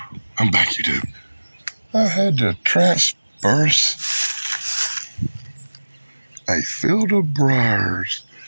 I'm back, YouTube. I had to transperse a field of briars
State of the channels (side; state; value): both; inverted; correlation -1.00